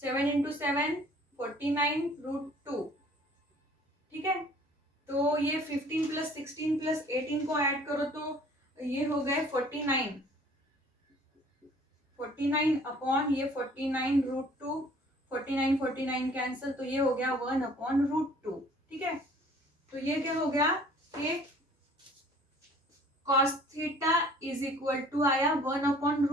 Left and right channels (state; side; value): normal; both; correlation 0.53